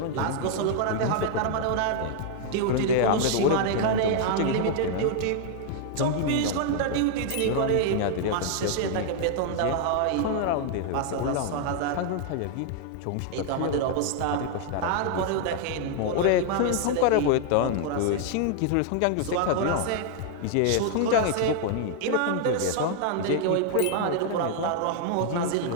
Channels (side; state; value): both; different; correlation 0.00